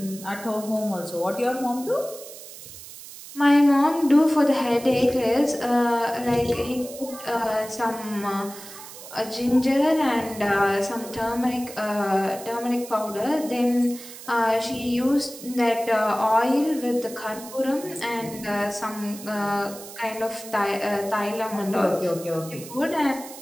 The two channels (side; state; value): right; noise; hiss, 15 dB below the sound